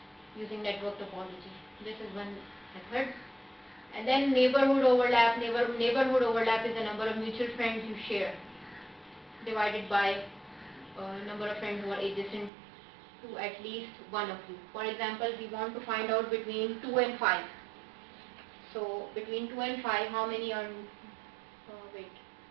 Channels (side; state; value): left; drops out; at 12.5 s